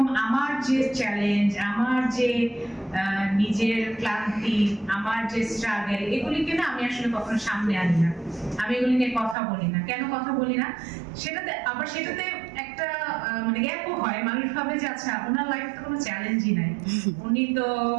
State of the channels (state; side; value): drops out; left; at 9.3 s